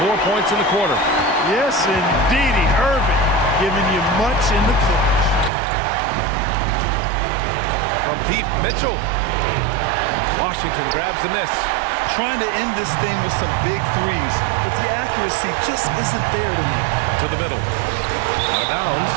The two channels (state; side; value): drops out; left; at 5.5 s